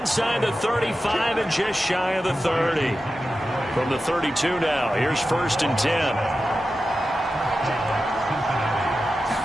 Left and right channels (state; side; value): normal; both; correlation 0.92